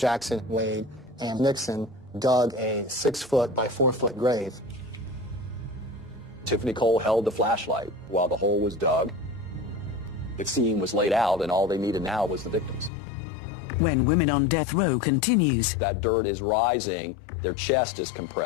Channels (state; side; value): drops out; right; at 12.9 s